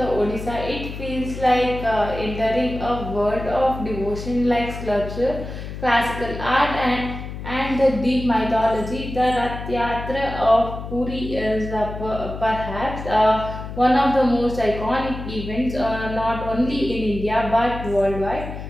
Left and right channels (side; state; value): left; noise; hum, 9 dB below the sound